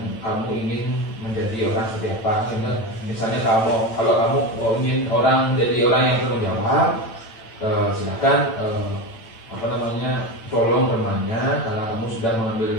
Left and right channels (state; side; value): late; right; 9.0 ms